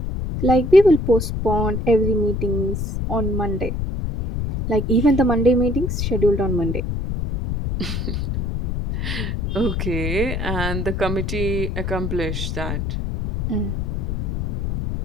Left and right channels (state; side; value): noise; left; rumble, 2 dB below the sound